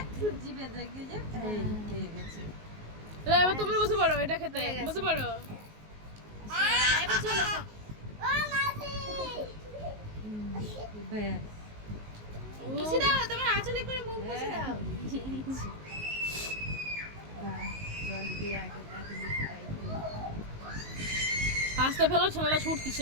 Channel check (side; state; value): left; late; 19 ms